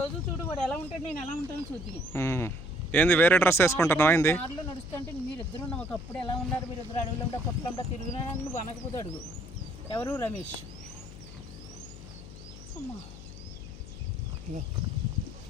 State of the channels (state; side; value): noise; left; hum, 14 dB below the sound